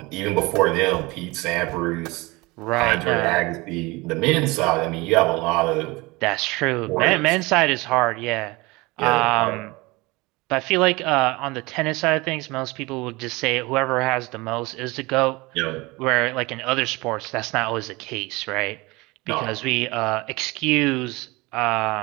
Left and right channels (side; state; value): left; quieter; 23.4 dB